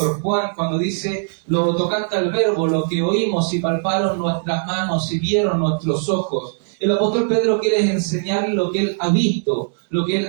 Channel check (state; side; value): silent; left; digital silence